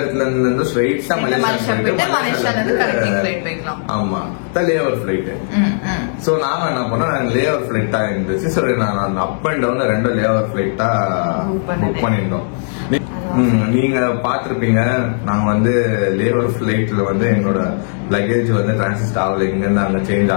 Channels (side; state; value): right; silent; 68 dB below the other